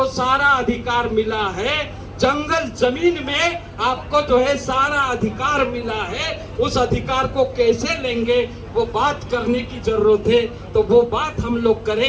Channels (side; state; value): both; identical; correlation 1.00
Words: सारा अधिकार मिला है। जंगल जमीन में आपको जो है सारा अधिकार मिला है। उस अधिकार को कैसे लेंगे वो बात करने की जरूरत है, तो वो बात हम लोग